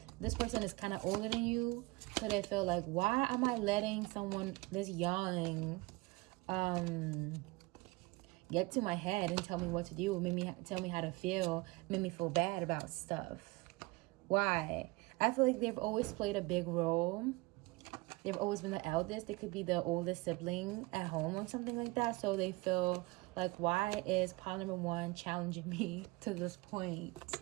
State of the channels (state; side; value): quieter; left; 23.3 dB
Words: this person is kind of older than you, so they feel like, why am I letting someone this young get to my head and tell me what to do, tell me how to feel, make me feel bad about stuff? Why? I feel like they've always played a big role. They've always been the eldest. They could be the oldest sibling at home or something like that. So they feel like, why is pile number one challenging me to this point?